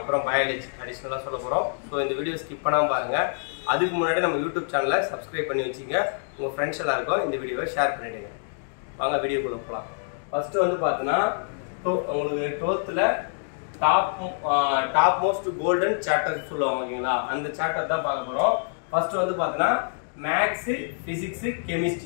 பயாலஜி அடிஷனலா சொல்ல போறோம். ஸோ இந்த வீடியோ ஸ்கிப் பண்ணாம பாருங்க. அதுக்கு முன்னாடி நம்ம யூடியூப் சேனலை சப்ஸ்கிரைப் பண்ணி வச்சுங்க. உங்க ஃப்ரெண்ட்ஸ் எல்லாருக்கும் இந்த வீடியோவை ஷேர் பண்ணிடுங்க. வாங்க வீடியோக்குள்ள போகலாம். ஃபர்ஸ்ட் வந்து பார்த்தீங்கன்னா உங்களுக்கு 12th top most golden chapter சொல்லுவாங்க ஓகேங்களா, அந்த சாப்டர் தான் பார்க்க போறோம். ஃபர்ஸ்ட் வந்து பார்த்தீங்கன்னா மேக்ஸ், பிசிக்ஸ்,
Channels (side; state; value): right; silent; digital silence